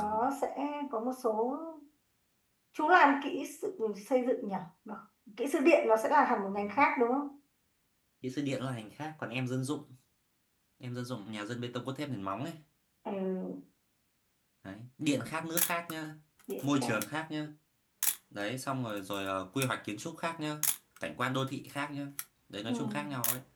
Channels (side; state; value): both; identical; correlation 1.00